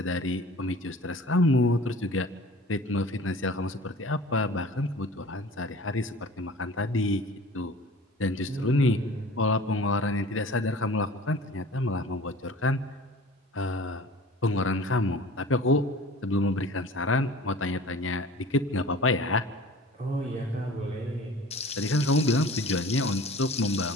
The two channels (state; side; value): normal; both; correlation 0.43